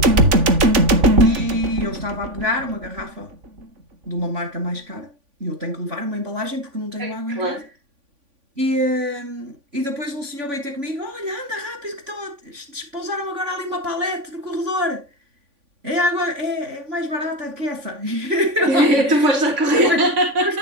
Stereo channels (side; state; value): left; late; 3.5 ms